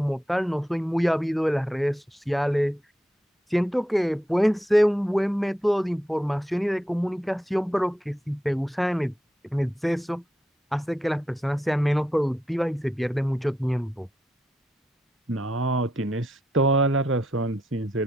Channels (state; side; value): normal; both; correlation 0.84